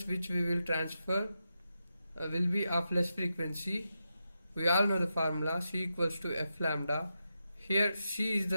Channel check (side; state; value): both; inverted; correlation -0.87